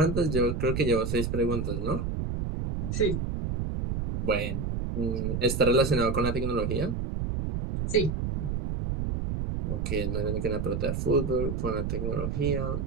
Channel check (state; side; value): noise; right; rumble, 2 dB below the sound